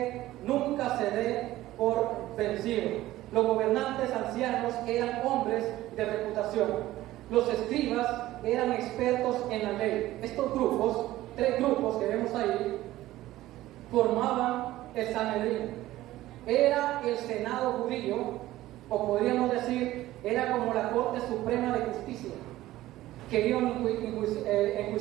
nunca se dé por vencido. Los gobernantes ancianos eran hombres de reputación. Los escribas eran expertos en la ley. Estos grupos, 3 grupos que vemos ahí, formaban el Sanedrín. Era el Senado judío, o podríamos decir, era como la Corte Suprema de Justicia. Querían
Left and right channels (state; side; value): quieter; left; 15.8 dB